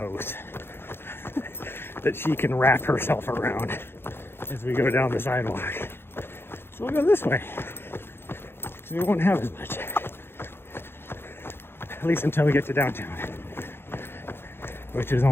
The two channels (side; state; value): right; late; 0.11 ms